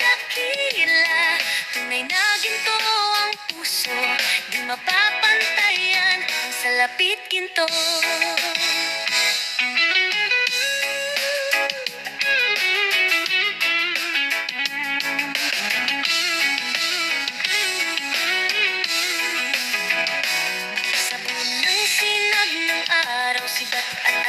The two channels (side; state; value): both; identical; correlation 1.00